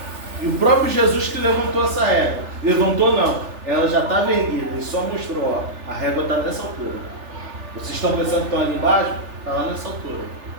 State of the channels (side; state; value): left; late; 3.4 ms